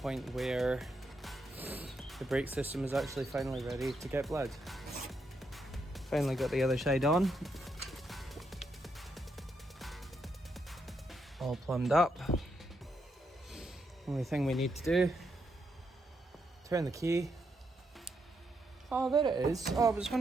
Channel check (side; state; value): both; normal; correlation 0.80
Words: where the brake system is actually finally ready to get blood. Finally got the other side on. All plumbed up. Only thing we need to do, turn the key. Oh, there it is. Oh, I was